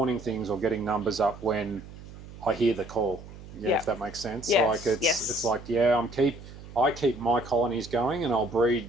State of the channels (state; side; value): noise; right; hum, 16 dB below the sound